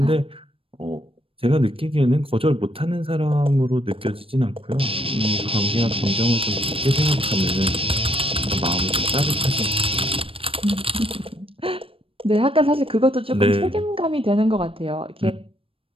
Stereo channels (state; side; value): late; left; 0.27 ms